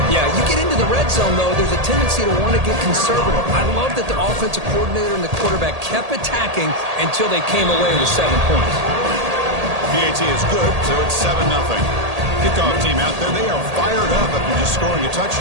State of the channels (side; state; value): left; late; 1.8 ms